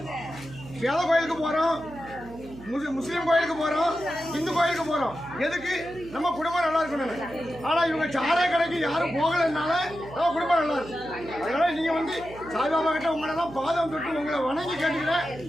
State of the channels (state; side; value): noise; right; hum, 17 dB below the sound